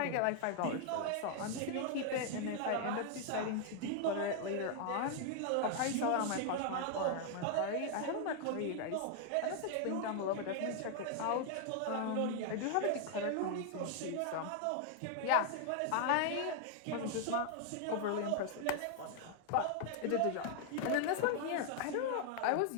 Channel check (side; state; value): both; different; correlation 0.00